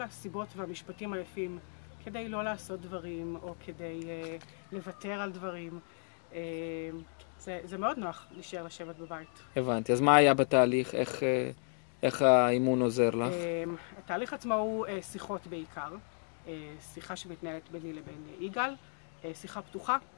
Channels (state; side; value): silent; right; 55 dB below the other